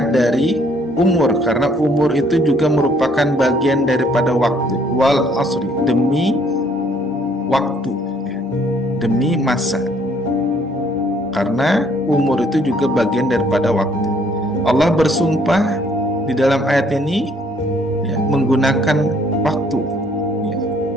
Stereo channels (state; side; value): normal; both; correlation 0.63